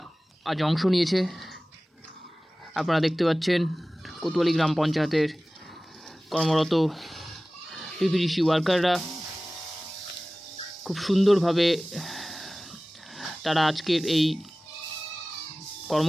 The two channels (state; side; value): normal; both; correlation 0.98